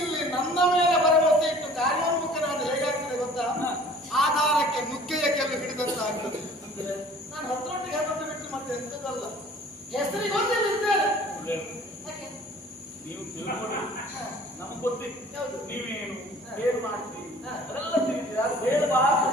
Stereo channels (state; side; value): normal; both; correlation 0.49